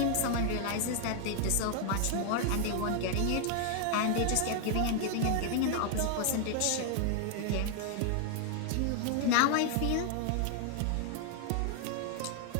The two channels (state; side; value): different; both; correlation 0.00